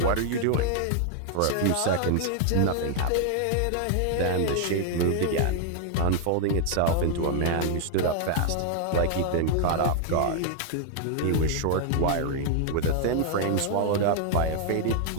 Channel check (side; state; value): both; different; correlation 0.00